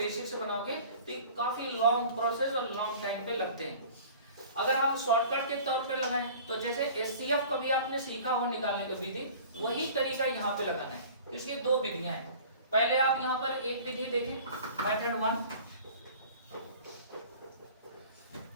से बनाओगे तो काफी लॉन्ग प्रोसेस और लॉन्ग टाइम पे लगते हैं। अगर हम शॉर्टकट के तौर पे लगाएं तो जैसे एचसीएफ कभी आपने सीखा हो निकालने का विधि, वही तरीका यहाँ पे लगाना है। इसकी 2 विधियां हैं। पहले आप यहाँ पर एक विधि देखें, मेथड 1,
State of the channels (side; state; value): both; inverted; correlation -0.44